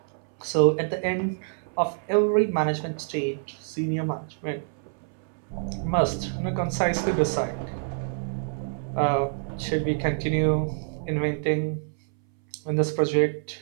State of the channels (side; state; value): left; silent; 60 dB below the other